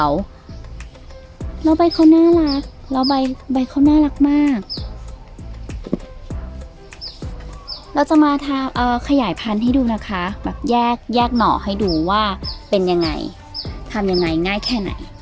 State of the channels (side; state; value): both; identical; correlation 1.00